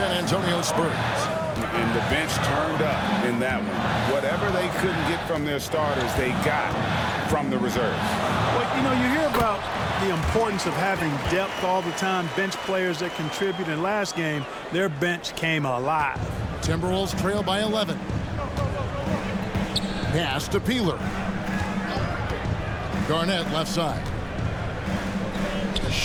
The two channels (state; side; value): identical; both; correlation 1.00